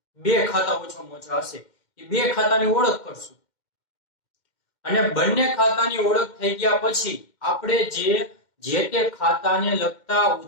બે ખાતા ઓછામાં ઓછા હશે, એ બે ખાતાની ઓળખ કરશું અને બંને ખાતાની ઓળખ થઈ ગયા પછી આપણે જે તે ખાતાને લગતા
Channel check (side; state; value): right; late; 2.1 ms